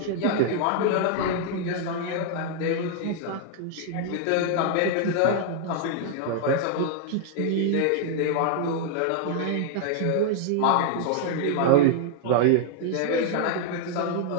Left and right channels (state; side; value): different; both; correlation 0.00